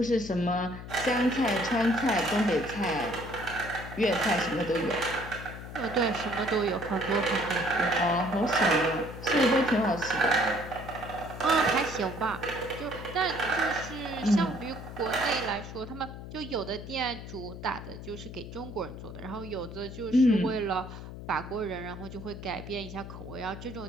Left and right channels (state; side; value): noise; left; hum, 11 dB below the sound